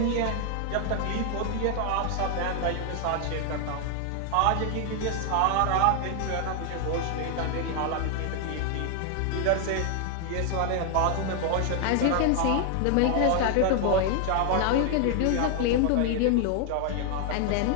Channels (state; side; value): different; both; correlation 0.00